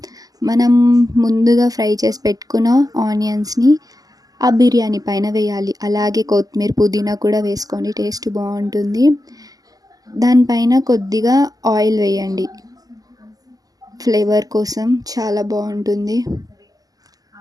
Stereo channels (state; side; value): late; left; 0.17 ms